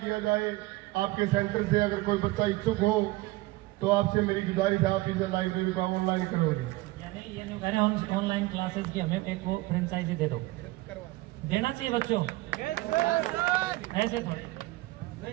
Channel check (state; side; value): quieter; left; 19.8 dB